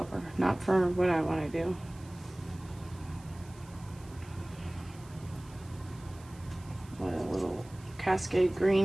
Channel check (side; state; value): right; noise; hiss, 24 dB below the sound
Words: not for what I want to do. Let a little Cascade